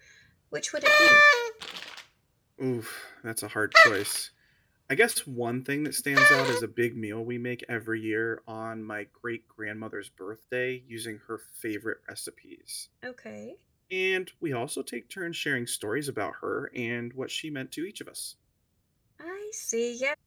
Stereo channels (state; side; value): identical; both; correlation 1.00